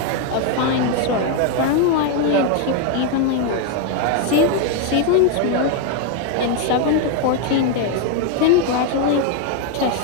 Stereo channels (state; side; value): different; both; correlation 0.01